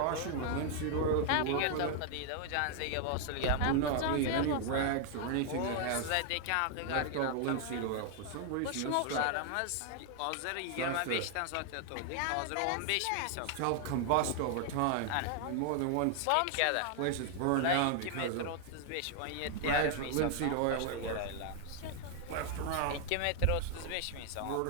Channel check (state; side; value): different; both; correlation 0.00